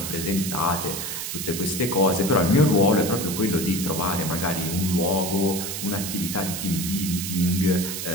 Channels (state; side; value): noise; right; hiss, 5 dB below the sound